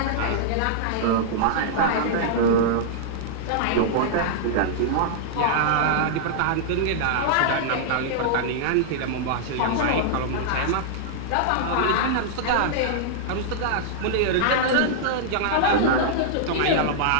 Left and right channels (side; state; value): both; different; correlation -0.02